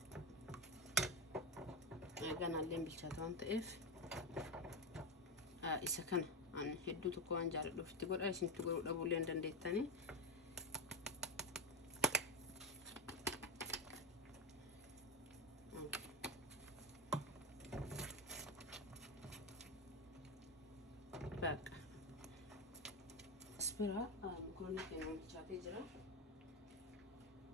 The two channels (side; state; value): both; normal; correlation 0.14